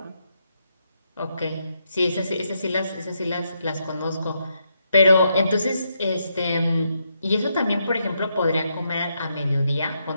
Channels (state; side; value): inverted; both; correlation -0.80